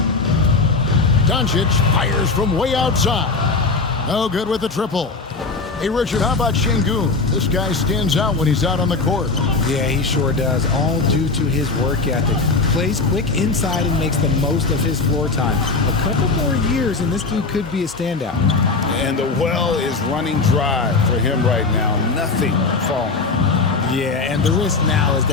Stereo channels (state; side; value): quieter; right; 3.9 dB